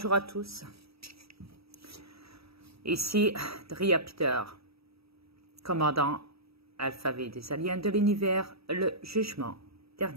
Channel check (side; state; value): left; late; 0.77 ms